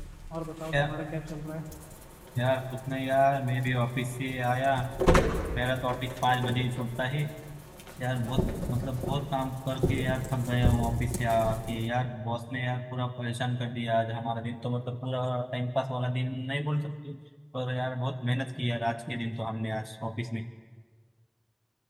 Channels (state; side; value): identical; both; correlation 1.00